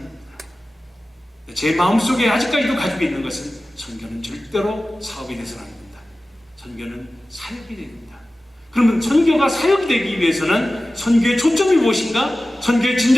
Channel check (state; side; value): normal; both; correlation 0.96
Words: 제 마음속에 아직까지도 가지고 있는 것은 선교는 절대로 사업이 돼서는 안 된다. 선교는 사역이 됩니다. 그러면 선교가 사역이 되기 위해서는 선교의 초점이 무엇인가? 선교의